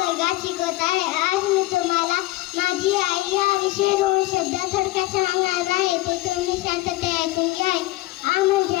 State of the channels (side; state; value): right; quieter; 18.2 dB